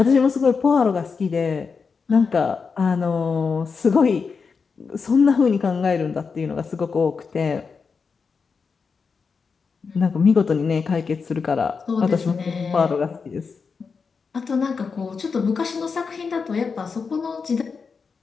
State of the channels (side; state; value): right; quieter; 5.3 dB